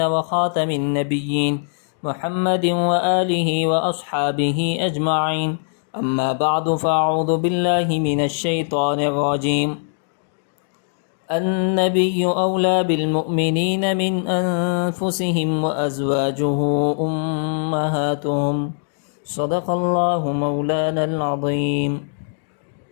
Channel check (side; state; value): right; silent; digital silence